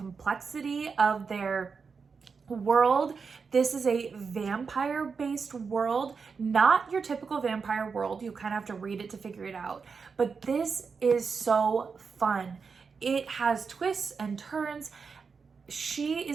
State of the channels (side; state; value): left; quieter; 5.3 dB